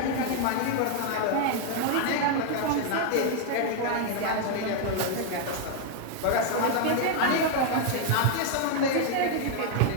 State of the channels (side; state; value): both; different; correlation 0.00